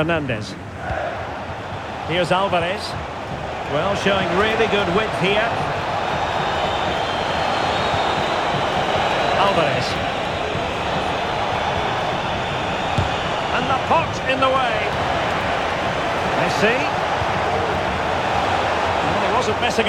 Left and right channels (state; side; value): identical; both; correlation 1.00